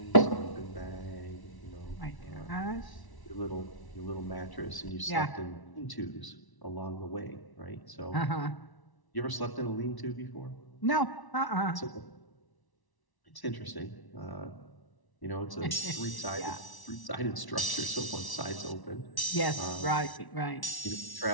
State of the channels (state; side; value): late; right; 1.1 ms